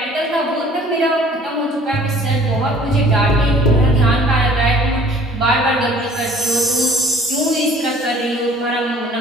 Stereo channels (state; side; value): normal; both; correlation 0.52